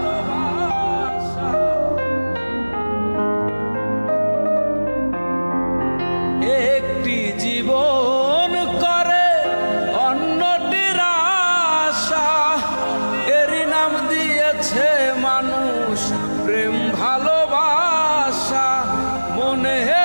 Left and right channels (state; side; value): inverted; both; correlation -1.00